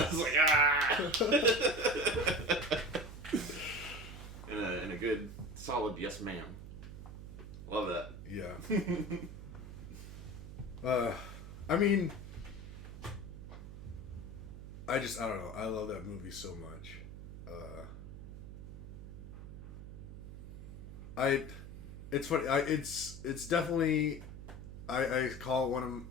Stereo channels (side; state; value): right; noise; hum, 11 dB below the sound